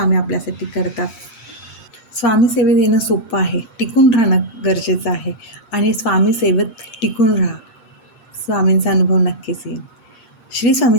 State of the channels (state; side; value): late; right; 8.6 ms